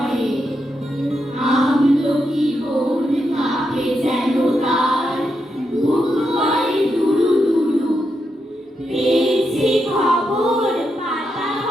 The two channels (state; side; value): normal; both; correlation 0.84